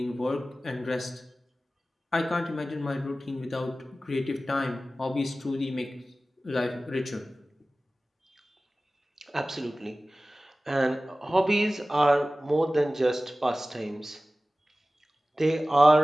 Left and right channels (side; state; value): both; normal; correlation 0.97